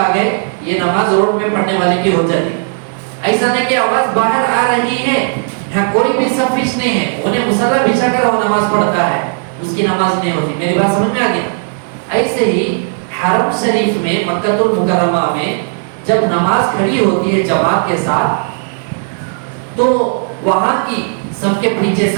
گئے، یہ نماز روڈ میں پڑھنے والے کی ہو جاتی۔ ایسا نہیں کہ آواز باہر آ رہی ہے، یہاں کوئی بھی صفیش نہیں ہے، انہیں مصلی بچھا کر وہ نماز پڑھتا ہے، اس کی نماز نہیں ہوتی۔ میری بات سمجھ میں آ گئی؟ ایسے ہی حرم شریف میں مکہ المکرمہ میں جب نماز کھڑی ہوتی ہے جماعت کے ساتھ، تو وہاں کی سب کے پیچھے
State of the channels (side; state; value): left; silent; 64 dB below the other